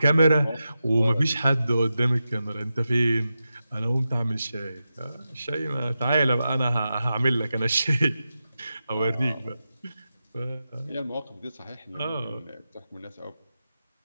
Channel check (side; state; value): both; inverted; correlation -0.91